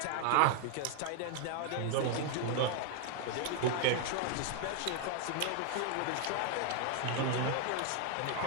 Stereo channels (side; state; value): both; different; correlation 0.00